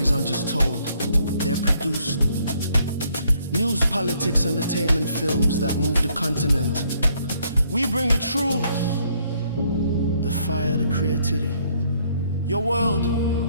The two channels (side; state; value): both; inverted; correlation -0.68